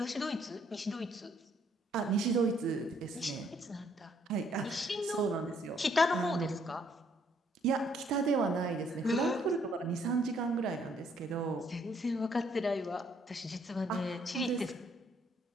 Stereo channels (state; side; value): normal; both; correlation 0.67